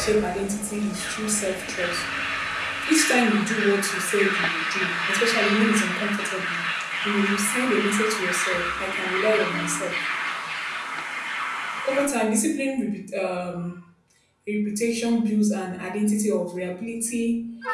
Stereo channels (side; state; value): both; identical; correlation 1.00